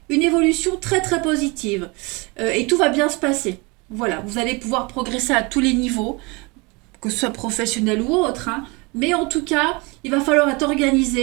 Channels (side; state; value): left; quieter; 27.5 dB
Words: une évolution très très positive. Et tout va bien se passer. Voilà, vous allez pouvoir progresser à tous les niveaux, que ce soit professionnel ou autre. Hein, mais en tout cas, il va falloir être